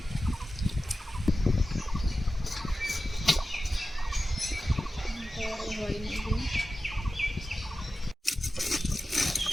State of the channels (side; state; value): both; normal; correlation 0.94